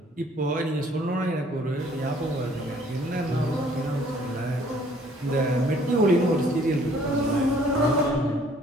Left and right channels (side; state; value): both; normal; correlation 0.59